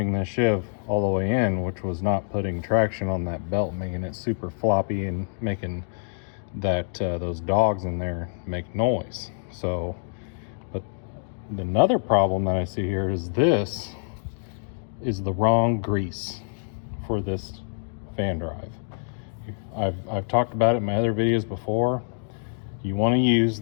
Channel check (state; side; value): silent; right; digital silence